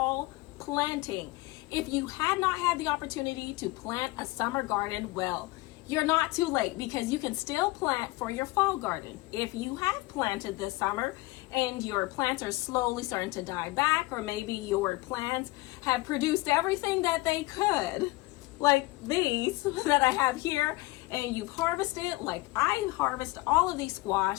planting. If you had not had the opportunity to plant a summer garden, well, you're not too late because you can still plant for your fall garden. If you have planted this summer and your plants are slowly starting to die back, or maybe your plants have produced everything that they could, like these that I have here, and you've harvested, like I harvest all of these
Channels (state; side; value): quieter; right; 21.3 dB